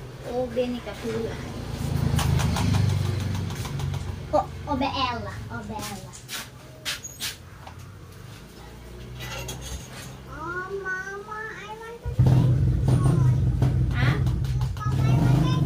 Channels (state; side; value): identical; both; correlation 1.00